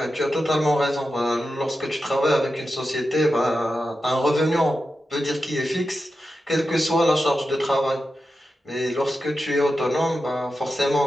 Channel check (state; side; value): normal; both; correlation 0.91